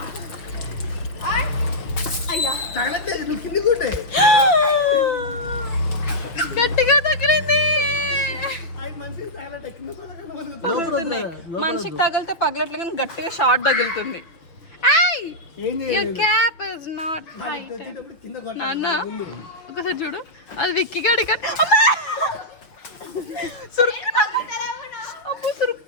గట్టిగా తగిలింది. మనిషికి తగిలితే పగలట్లే కానీ గట్టిగా షార్ట్ తగులుతుంది. క్యాప్ ఇస్ నాట్ నాన్న. ఒకసారి చూడు, అది విక్కి గడి సురుక్కున అప్పు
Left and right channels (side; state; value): right; late; 5.7 ms